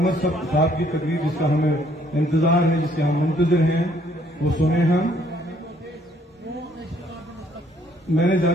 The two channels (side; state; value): both; normal; correlation 0.65